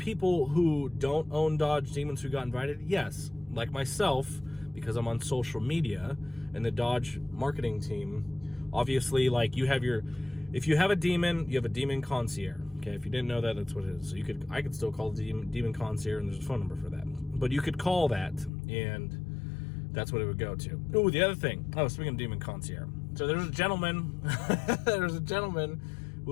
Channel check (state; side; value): drops out; right; at 18.5 s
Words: who don't own Dodge Demons who got invited? Yes, like myself, because I'm on social media and the Dodge marketing team. Obviously, like, if you have a Demon, you have a Demon concierge. Okay, if you didn't know that, that's what it is. So I could still call the Demon concierge, and there's a phone number for that. But you could call that, and that's what it would go to. Oh, the other thing. Oh, speaking of Demon concierge. So there's a gentleman, who